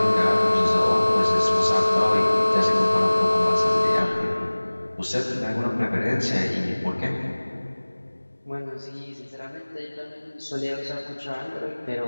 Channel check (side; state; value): both; inverted; correlation -1.00